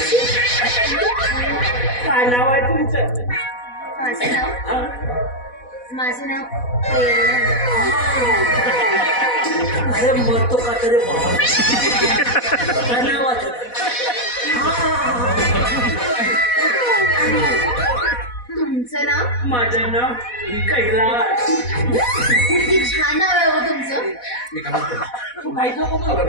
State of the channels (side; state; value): right; late; 4.1 ms